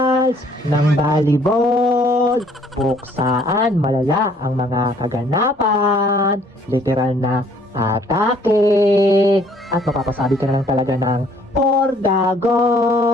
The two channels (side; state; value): both; normal; correlation 0.61